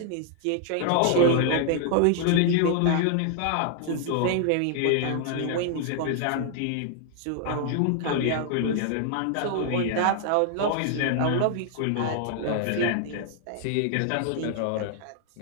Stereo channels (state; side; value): different; both; correlation 0.00